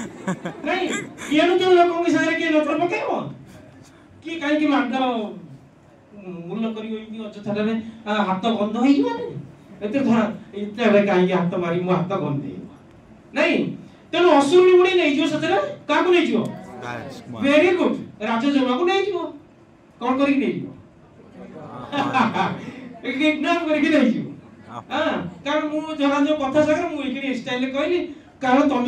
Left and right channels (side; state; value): both; identical; correlation 1.00